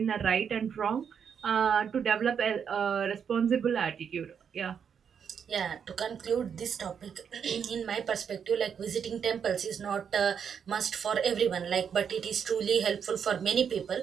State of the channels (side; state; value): left; quieter; 7.3 dB